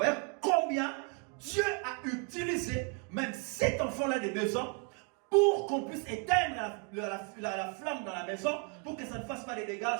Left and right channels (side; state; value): left; quieter; 35.3 dB